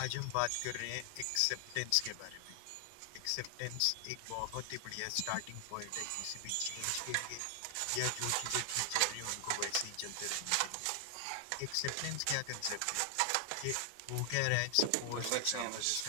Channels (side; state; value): both; different; correlation 0.00